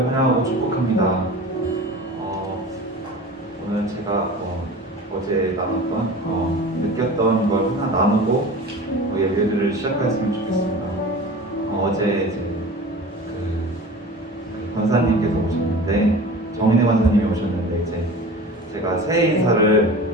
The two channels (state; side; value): normal; both; correlation 0.37